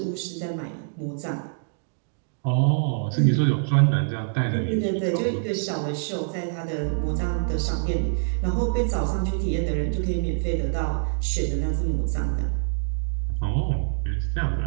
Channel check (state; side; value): silent; left; digital silence